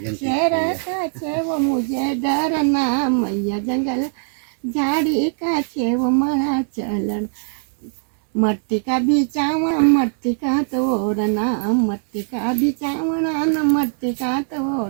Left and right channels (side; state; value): left; silent; 59 dB below the other